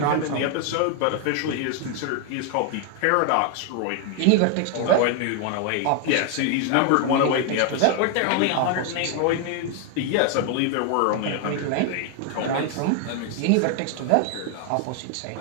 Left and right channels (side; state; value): both; different; correlation 0.01